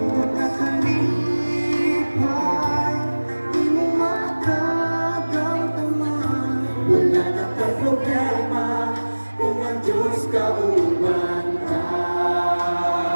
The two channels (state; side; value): inverted; both; correlation -1.00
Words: na kalipay, di mo makagautaman. Wala na kang problema kung ang Diyos kauban ka.